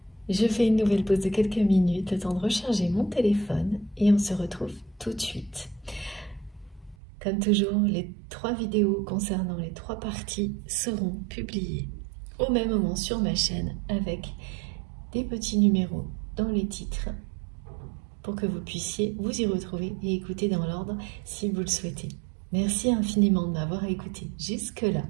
Je fais une nouvelle pause de quelques minutes, le temps de recharger mon téléphone et on se retrouve tout de suite. Comme toujours, les 3 vidéos concernant les 3 parties seront publiées au même moment sur ma chaîne avec des petits numéros dans les titres pour que vous puissiez vous y retrouver et écouter dans l'ordre si vous le souhaitez. Merci infiniment de m'avoir écouté jusque-là.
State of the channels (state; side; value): drops out; left; at 7.0 s